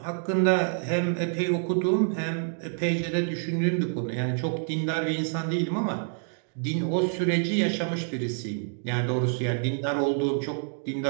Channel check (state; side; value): silent; left; digital silence